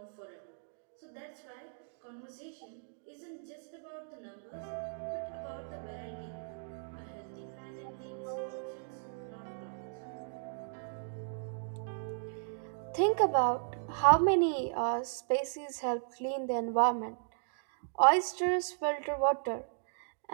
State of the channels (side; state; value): left; silent; digital silence